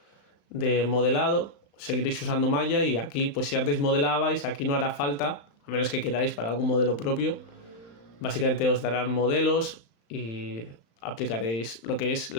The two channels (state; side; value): late; right; 35 ms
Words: de modelado, seguiréis usando Maya y aquí, pues si antes modelabais, aquí no hará falta, a menos que queráis para algún modelo propio, básicamente os darán modelos y aplicaréis lo que es